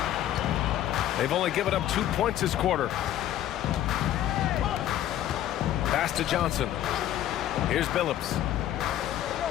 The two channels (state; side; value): quieter; right; 12.3 dB